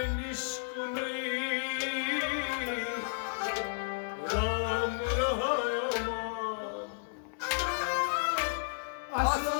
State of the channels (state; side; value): silent; right; digital silence